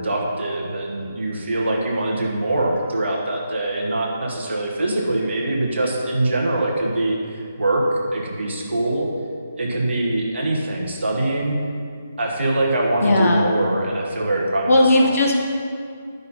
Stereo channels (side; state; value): both; inverted; correlation -0.82